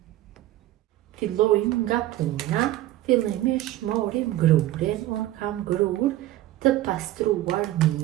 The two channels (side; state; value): left; quieter; 14.8 dB